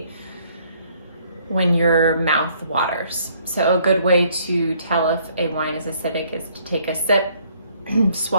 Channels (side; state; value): both; inverted; correlation -0.64